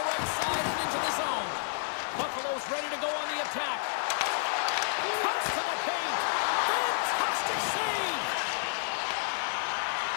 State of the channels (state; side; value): silent; right; 58 dB below the other